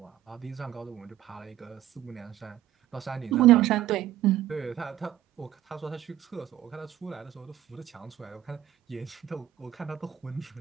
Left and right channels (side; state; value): left; quieter; 12.0 dB